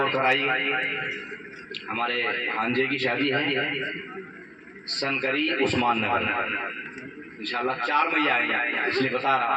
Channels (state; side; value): identical; both; correlation 1.00